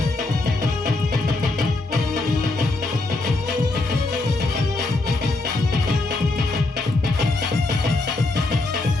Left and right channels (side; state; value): right; quieter; 3.1 dB